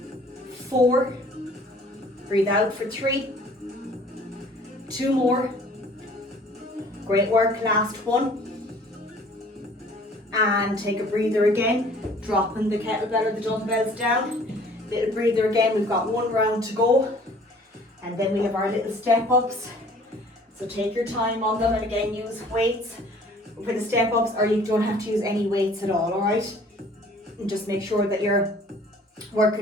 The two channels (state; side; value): normal; both; correlation 0.53